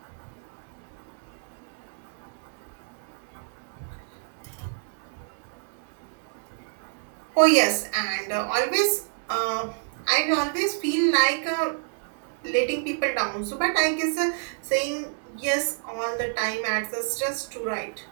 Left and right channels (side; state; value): left; silent; digital silence